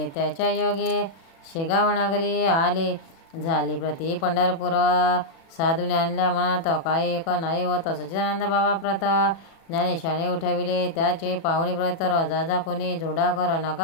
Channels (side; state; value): right; late; 36 ms